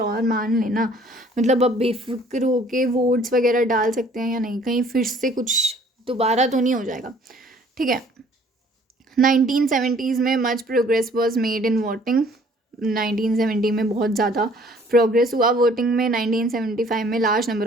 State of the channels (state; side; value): normal; both; correlation 0.57